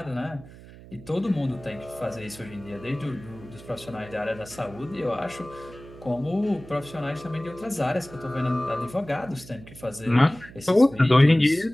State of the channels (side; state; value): right; noise; hum, 18 dB below the sound